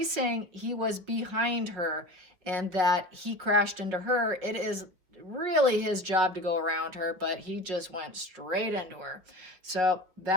saying he was behind her and that he crashed into her. It is really his job to go around her, but he just went straight into her. So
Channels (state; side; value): late; left; 5.4 ms